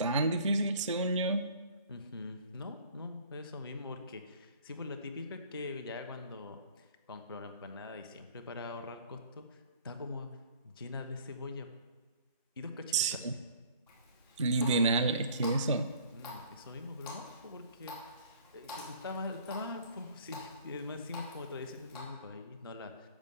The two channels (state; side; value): inverted; both; correlation -0.52